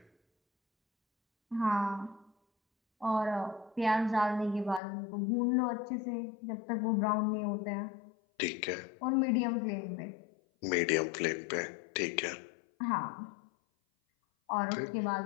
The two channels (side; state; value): right; drops out; at 4.8 s